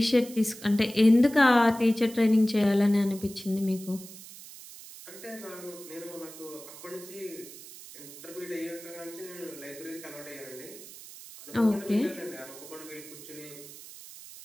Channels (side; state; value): right; noise; hiss, 16 dB below the sound